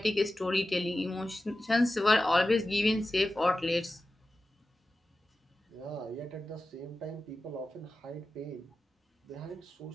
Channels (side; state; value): both; normal; correlation 0.94